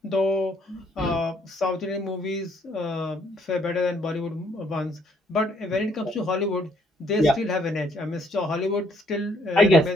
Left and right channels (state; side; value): normal; both; correlation 0.67